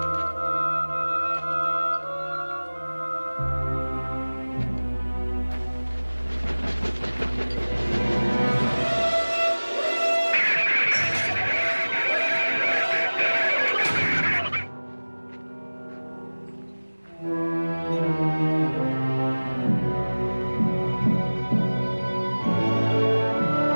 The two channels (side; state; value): both; inverted; correlation -1.00